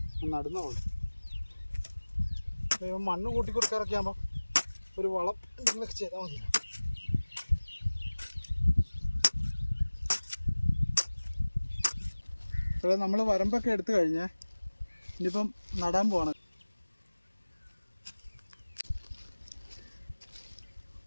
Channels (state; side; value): inverted; both; correlation -1.00